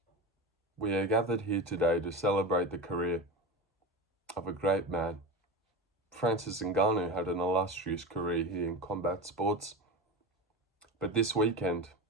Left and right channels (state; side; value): normal; both; correlation 0.25